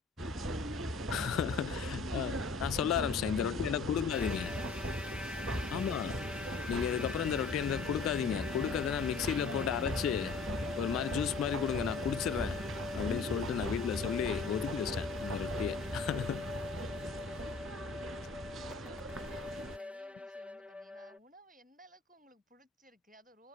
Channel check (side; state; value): right; quieter; 4.6 dB